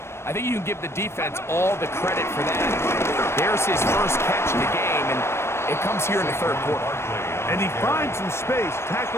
I think you can give the defense all the credit for that. There's his first catch in the game, and it comes here in the 3rd quarter. And he finds some space,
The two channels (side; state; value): right; late; 0.12 ms